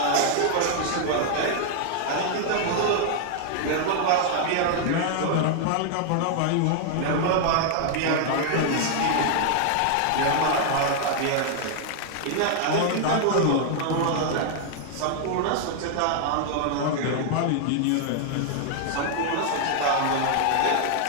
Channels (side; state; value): both; different; correlation 0.00